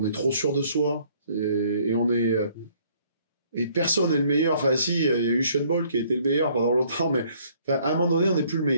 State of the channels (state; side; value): inverted; both; correlation -0.61